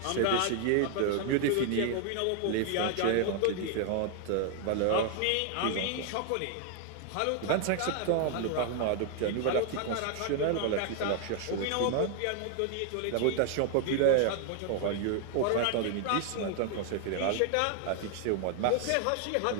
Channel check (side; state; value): both; different; correlation 0.00